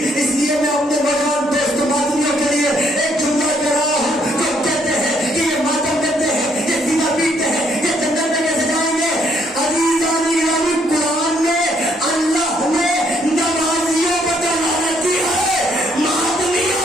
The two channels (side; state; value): both; normal; correlation 0.69